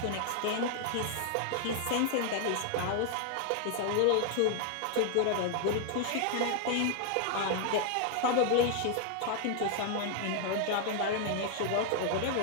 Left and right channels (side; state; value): both; different; correlation 0.00